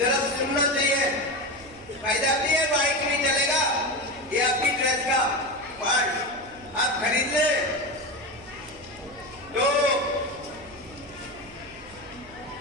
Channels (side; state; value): right; noise; hum, 23 dB below the sound